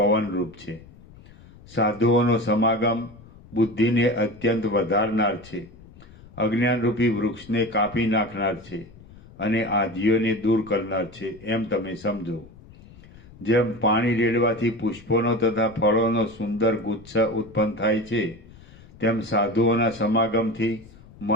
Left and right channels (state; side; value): noise; left; rumble, 22 dB below the sound